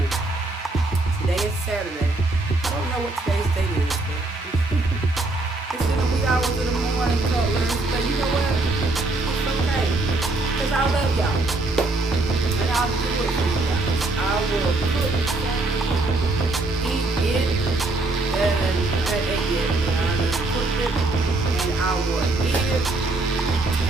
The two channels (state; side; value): quieter; left; 3.1 dB